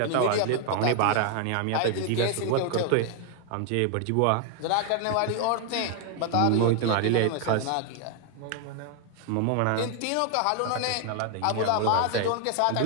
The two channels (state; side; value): different; both; correlation 0.00